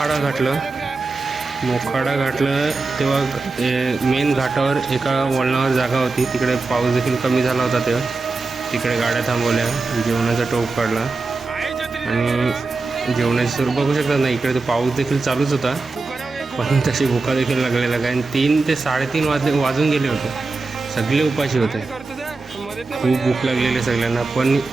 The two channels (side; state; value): left; quieter; 3.7 dB